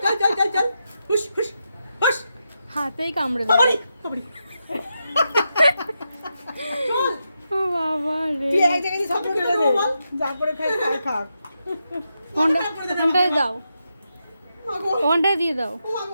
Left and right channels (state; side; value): inverted; both; correlation -0.86